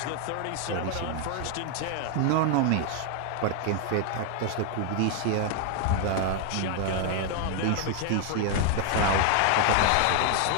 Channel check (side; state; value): both; different; correlation 0.01